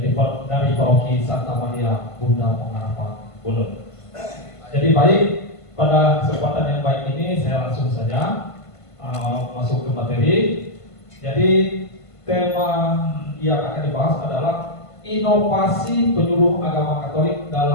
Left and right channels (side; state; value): right; late; 1.5 ms